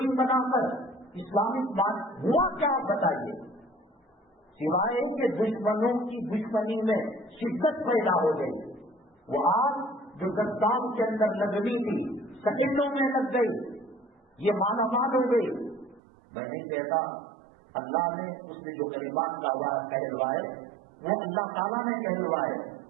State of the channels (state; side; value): drops out; left; at 16.0 s